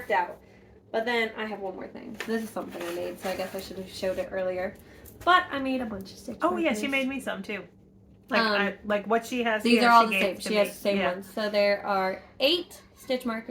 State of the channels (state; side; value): identical; both; correlation 1.00